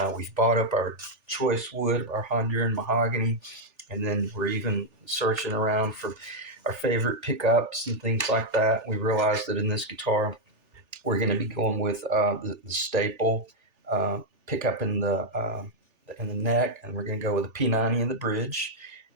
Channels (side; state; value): left; late; 3.4 ms